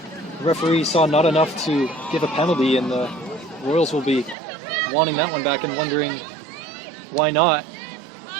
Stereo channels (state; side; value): drops out; left; at 4.4 s